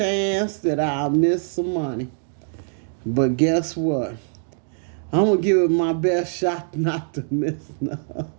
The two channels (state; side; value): silent; left; digital silence